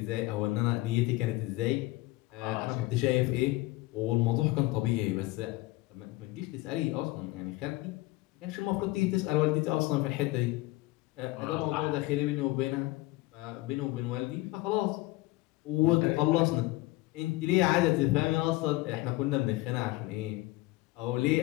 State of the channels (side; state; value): right; quieter; 19.6 dB